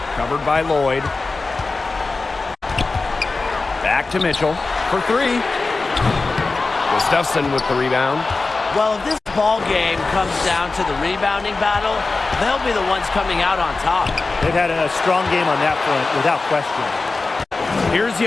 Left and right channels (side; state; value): right; quieter; 3.7 dB